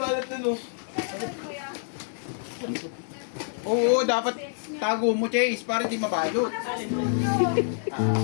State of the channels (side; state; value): right; silent; 60 dB below the other